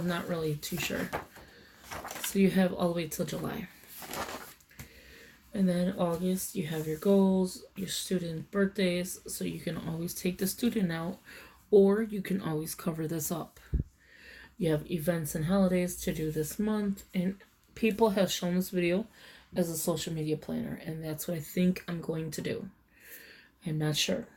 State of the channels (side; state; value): both; identical; correlation 1.00